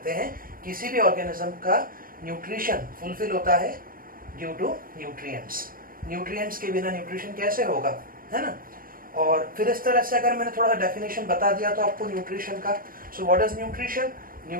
हैं किसी भी ऑर्गेनिज्म का न्यूट्रिशन फुलफिल होता है ड्यू टू न्यूट्रिएंट्स। न्यूट्रिएंट्स के बिना न्यूट्रिशन कैसे होगा, है ना। और फिर इस तरह से अगर मैंने थोड़ा सा डेफिनेशन बता दिया तो आपको न्यूट्रिशन का। So what is nutrition?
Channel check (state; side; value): late; left; 0.41 ms